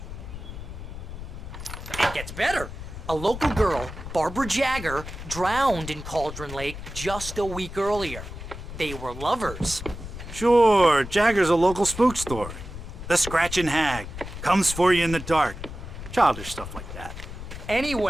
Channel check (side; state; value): left; noise; rumble, 10 dB below the sound